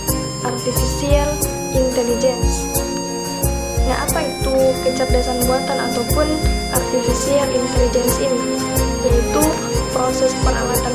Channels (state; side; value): identical; both; correlation 1.00